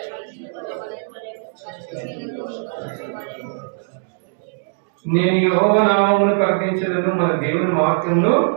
నేను యెహోవా నామమును ప్రకటించదను, మన దేవుని మహత్యమును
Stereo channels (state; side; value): silent; left; digital silence